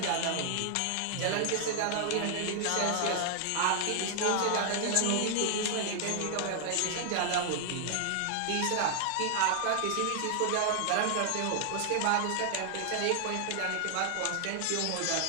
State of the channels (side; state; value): both; different; correlation 0.00